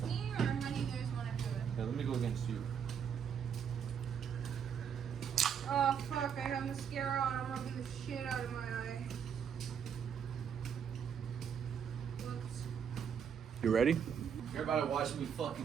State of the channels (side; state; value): left; quieter; 7.7 dB